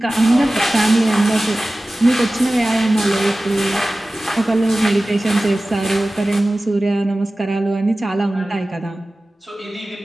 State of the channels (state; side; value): normal; both; correlation 0.97